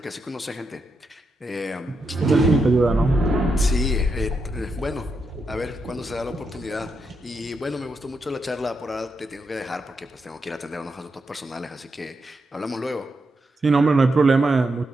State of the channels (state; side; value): normal; both; correlation 0.83